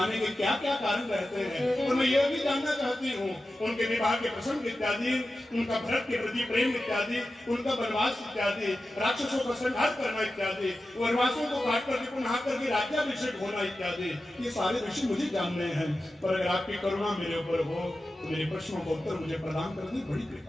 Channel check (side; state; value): both; normal; correlation 0.93